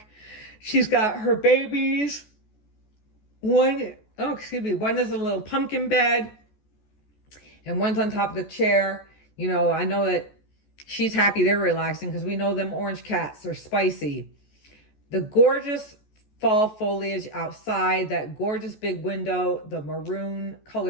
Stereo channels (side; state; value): right; late; 14 ms